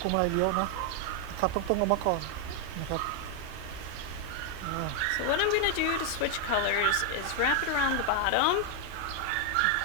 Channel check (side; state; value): both; different; correlation 0.01